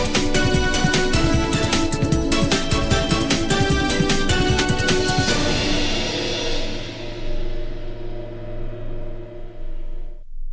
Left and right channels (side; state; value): both; identical; correlation 1.00